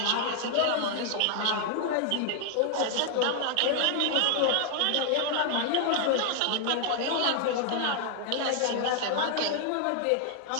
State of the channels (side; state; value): both; different; correlation 0.00